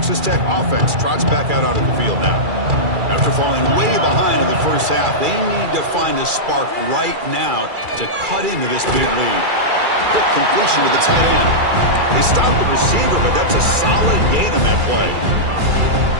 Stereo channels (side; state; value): left; late; 2.3 ms